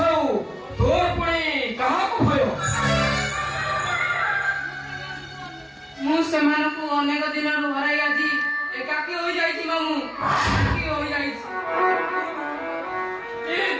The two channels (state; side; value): identical; both; correlation 1.00